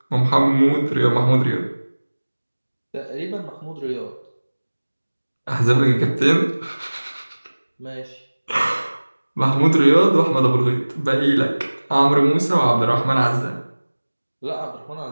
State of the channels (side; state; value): both; inverted; correlation -1.00